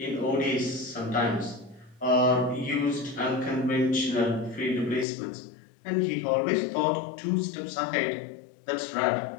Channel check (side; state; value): right; drops out; at 5.1 s